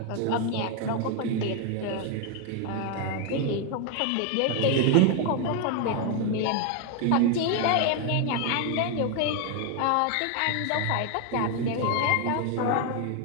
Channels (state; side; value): different; both; correlation 0.01